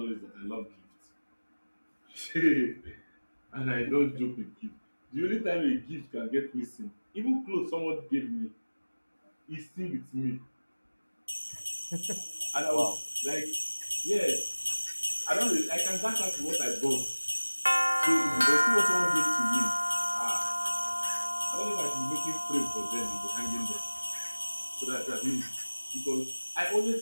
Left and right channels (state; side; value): inverted; both; correlation -1.00